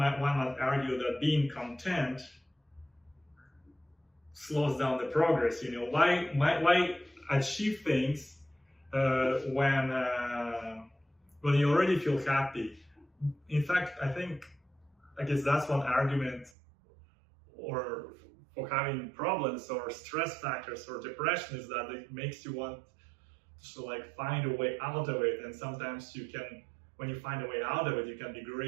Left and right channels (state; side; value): drops out; left; at 16.5 s